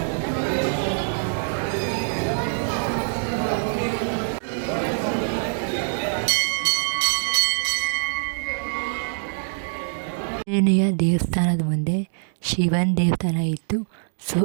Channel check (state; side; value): silent; left; digital silence